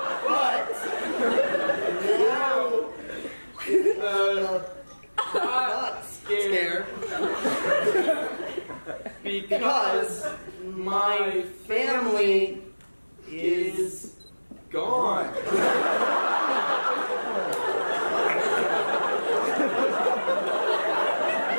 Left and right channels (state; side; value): inverted; both; correlation -1.00